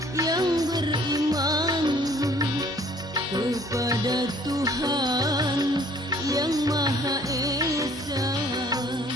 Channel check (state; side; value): normal; both; correlation 0.57